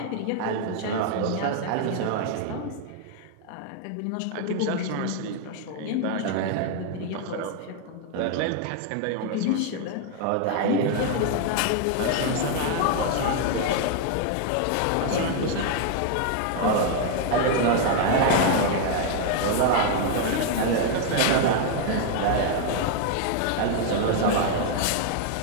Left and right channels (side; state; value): both; different; correlation 0.00